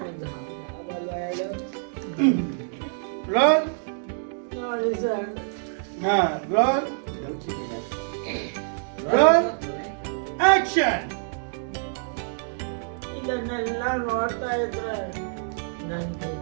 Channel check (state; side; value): silent; left; digital silence